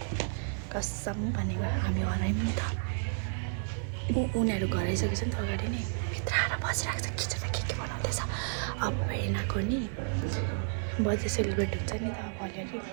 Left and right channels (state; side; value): silent; left; digital silence